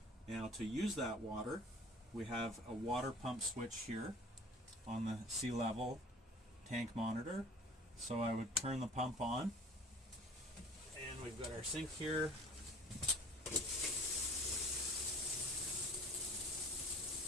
Now to use that water, we have a water pump switch here on the sea level tank monitor. So I would turn the pump on, and we've got our sink here.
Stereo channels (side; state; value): both; normal; correlation 0.46